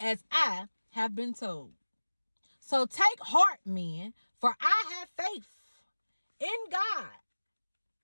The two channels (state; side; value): inverted; both; correlation -1.00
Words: I have been told. So take heart, men, for I have faith in God